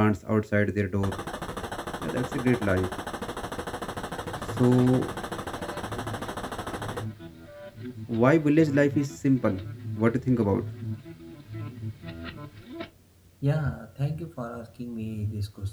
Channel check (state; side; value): identical; both; correlation 1.00